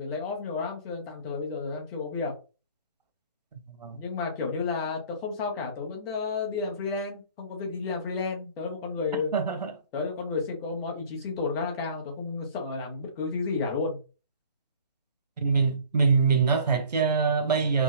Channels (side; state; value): both; inverted; correlation -0.49